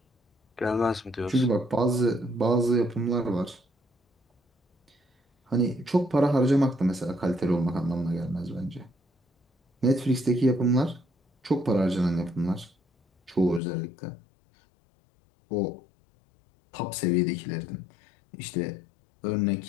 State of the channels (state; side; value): drops out; right; at 13.6 s